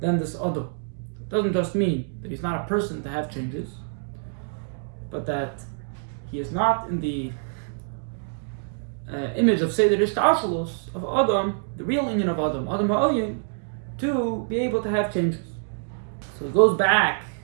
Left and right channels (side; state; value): left; silent; digital silence